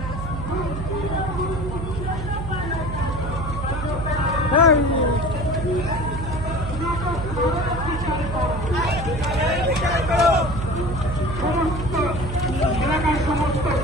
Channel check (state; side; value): noise; right; hum, 5 dB below the sound